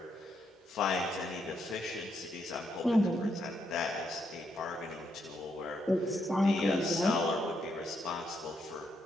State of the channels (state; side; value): normal; both; correlation 0.78